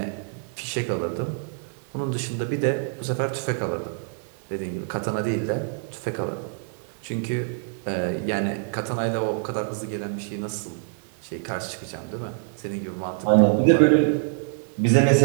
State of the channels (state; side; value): silent; left; 61 dB below the other